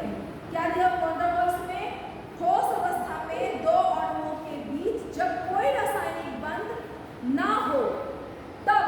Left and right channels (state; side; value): identical; both; correlation 1.00